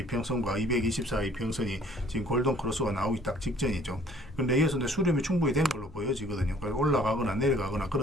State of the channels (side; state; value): left; noise; hum, 20 dB below the sound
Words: 224 이평선이 지금 골든 크로스가 나오기 딱 직전이죠. 근데 여기서 이제 수렴이 충분히 된 걸로 보여지거든요. 그래서 올라가거나 내려가거나